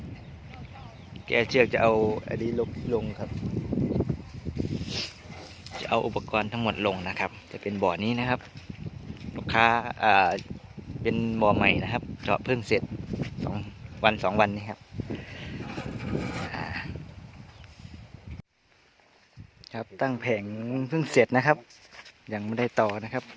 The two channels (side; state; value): both; identical; correlation 1.00